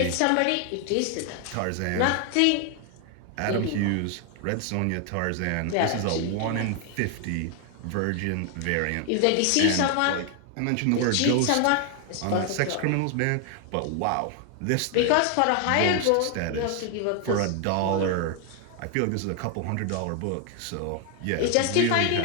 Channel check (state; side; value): different; both; correlation 0.00